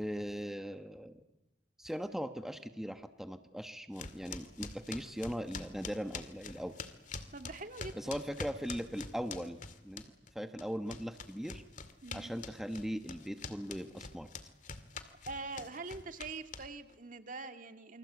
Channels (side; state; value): both; normal; correlation 0.77